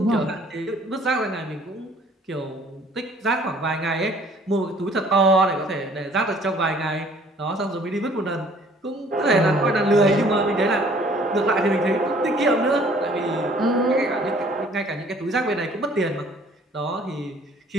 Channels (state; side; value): normal; both; correlation 0.56